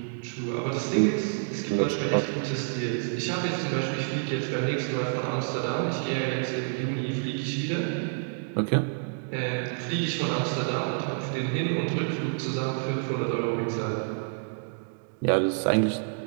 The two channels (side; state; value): left; silent; digital silence